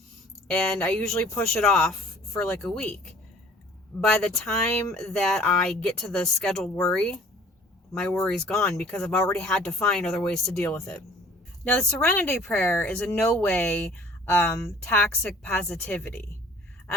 And I usually push it off for a week. By the time that I get to the scheduled worry, my worry's gone because I've already had to find other ways to deal with it. Now, the Serenity Prayer is in no way toxic positivity.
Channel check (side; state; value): both; normal; correlation 0.51